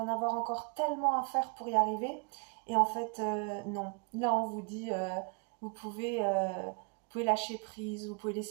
avoir encore tellement à faire pour y arriver. Et en fait, non. Là, on vous dit, vous pouvez, euh, vous pouvez lâcher prise, vous pouvez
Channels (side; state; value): left; quieter; 38.1 dB